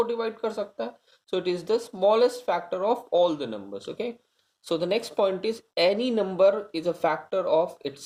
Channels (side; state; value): both; identical; correlation 1.00